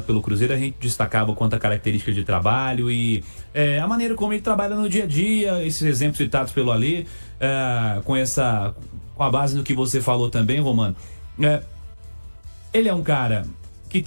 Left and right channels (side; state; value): both; inverted; correlation -1.00